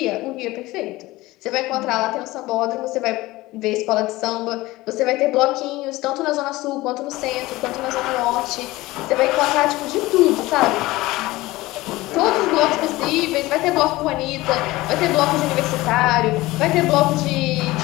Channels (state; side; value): quieter; right; 19.1 dB